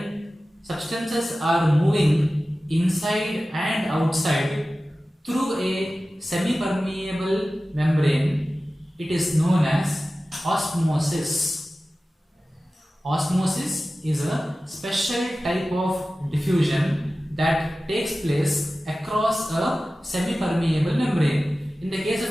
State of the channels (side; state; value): both; normal; correlation 0.96